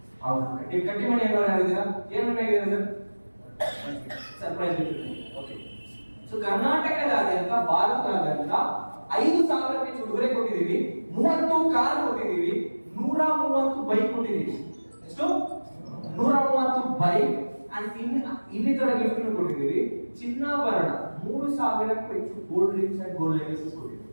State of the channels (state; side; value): inverted; both; correlation -1.00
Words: ಹೌದು, ಕಟ್ಟಿ ಮಣಿ ಏನಾದ್ರು ಆಗಿದ್ದೀರಾ? ಏನ್ ವಿನ್ ಆಗಿದ್ದೀರಾ sir? Surprise gift. Okay. So ಕರ್ನಾಟಕದಾದ್ಯಂತ, ಭಾರತದಾದ್ಯಂತ 5,000 ಹೆಚ್ಚು ಉಡುಗೊರೆ ಕೊಟ್ಟಿದ್ದೀವಿ, 30 ಕಾರ್ ಕೊಟ್ಟಿದ್ದೀವಿ, 130 ಬೈಕ್ ಕೊಟ್ಟಿದ್ದೀವಿ. ಎಷ್ಟು? 130 ಬೈಕ್ ಅಂಡ್ ಇನ್ನಿತರ ಗಿಫ್ಟ್ ಕೊಟ್ಟಿದ್ದೀವಿ. ಚಿನ್ನಾಭರಣ 3,000ಕ್ಕೂ ಹೆಚ್ಚು gold rings and gold necklaces ಕೊಟ್ಟಿದ್ದೀವಿ.